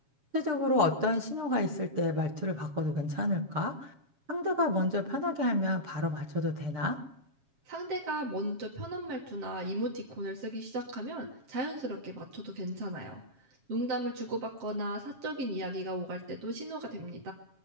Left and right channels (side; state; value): left; late; 7.3 ms